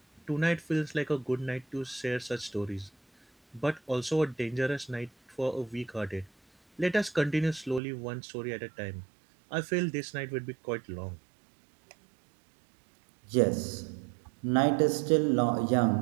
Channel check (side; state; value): left; drops out; at 7.8 s